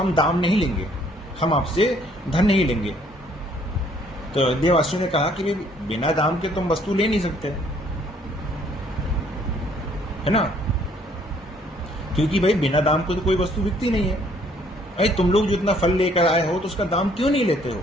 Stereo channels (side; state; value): both; normal; correlation 0.63